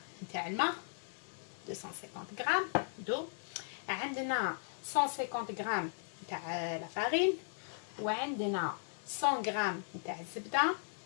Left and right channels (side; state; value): right; silent; 53 dB below the other